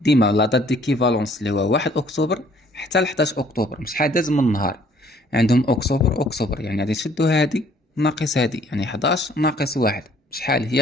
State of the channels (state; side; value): normal; both; correlation 0.60